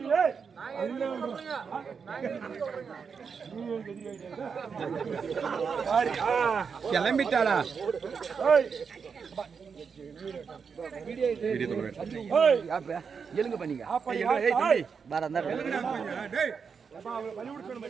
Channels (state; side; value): quieter; left; 6.0 dB